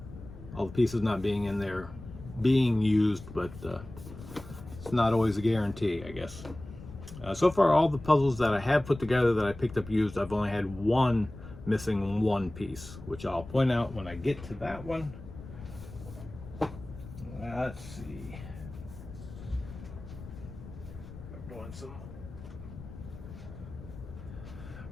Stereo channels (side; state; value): left; noise; rumble, 14 dB below the sound